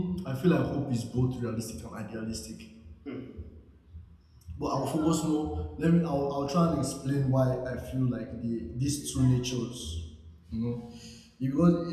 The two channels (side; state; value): both; identical; correlation 1.00